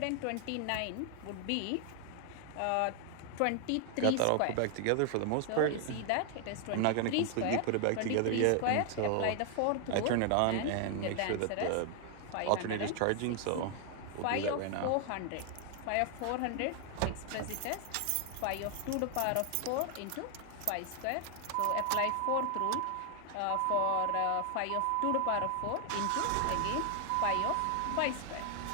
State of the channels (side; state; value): both; different; correlation 0.00